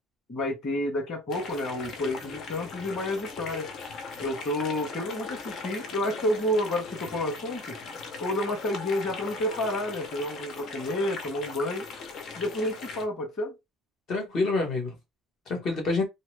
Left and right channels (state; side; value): normal; both; correlation 0.47